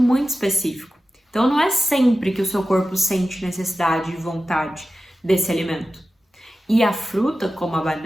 específico. Então não é sempre que o seu corpo sente necessidade e vontade desse alimento. E a fruta, como a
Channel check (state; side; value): normal; both; correlation 0.93